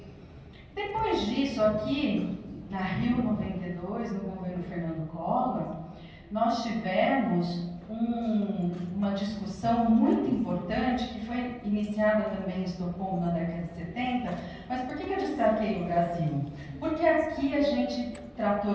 Depois disso, aqui na Rio 92, no governo Fernando Collor, nós tivemos uma discussão muito importante, que foi iniciada também em Estocolmo na década de 70, mas por que eu destaquei o Brasil? Porque aqui a gente tratou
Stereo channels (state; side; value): identical; both; correlation 1.00